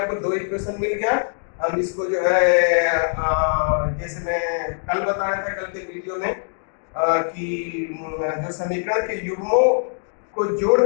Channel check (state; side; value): silent; right; digital silence